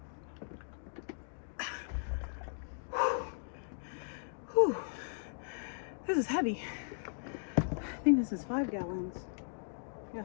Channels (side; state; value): right; silent; digital silence